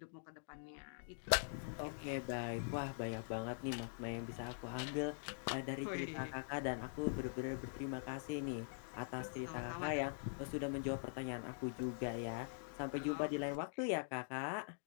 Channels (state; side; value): silent; right; digital silence